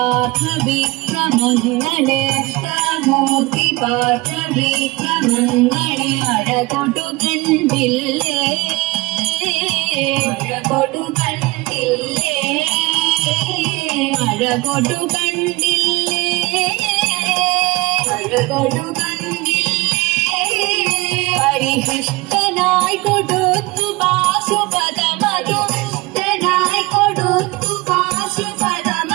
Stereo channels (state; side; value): quieter; left; 22.7 dB